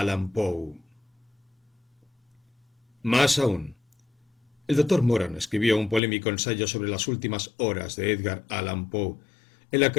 Poe. Más aún, el doctor Moran escribió un polémico ensayo sobre las últimas horas de Edgar Allan Poe, en la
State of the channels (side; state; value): right; drops out; at 6.0 s